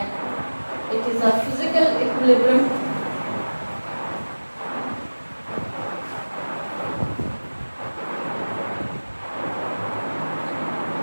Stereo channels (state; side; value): inverted; both; correlation -1.00